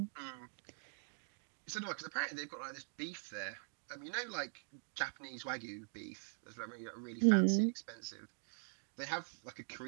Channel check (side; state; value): left; silent; digital silence